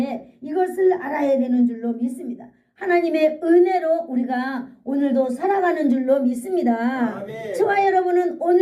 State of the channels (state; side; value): identical; both; correlation 1.00